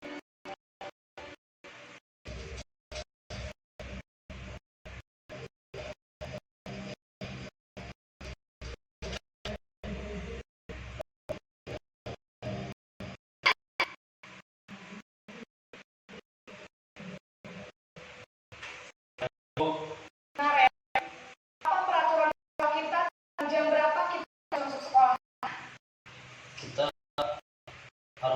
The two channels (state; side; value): identical; both; correlation 1.00